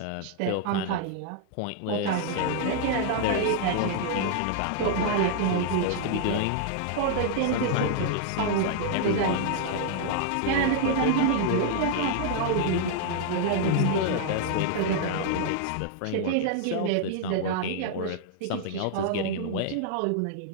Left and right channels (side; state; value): both; different; correlation -0.01